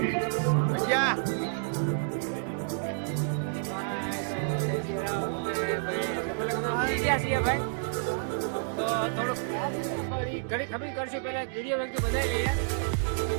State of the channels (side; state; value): left; silent; 58 dB below the other